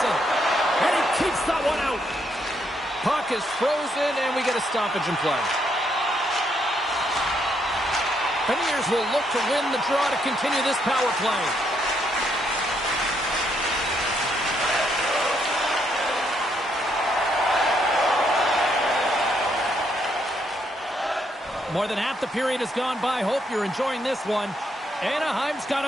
And he keeps that one out. Puck is frozen, and we get a stoppage in play. Beniers will look to win the draw to continue this power play. More than half the period has gone by. Hope you're enjoying this one. Anaheim's got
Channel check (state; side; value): normal; both; correlation 0.74